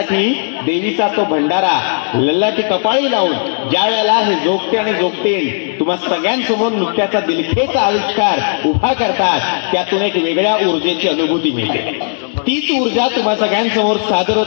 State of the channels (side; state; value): right; silent; digital silence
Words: देवीचा तो भंडारा लल्लाटी कपाळी लावून ज्या वेळेला हे जोगते आणि जोगतेन तुम्हा सगळ्यांसमोर नृत्याचा दिलखेचा आविष्कार उभा करतात त्यातून एक वेगळ्या ऊर्जेची अनुभूती मिळते. तीच ऊर्जा तुम्हा सगळ्यांसमोर सादर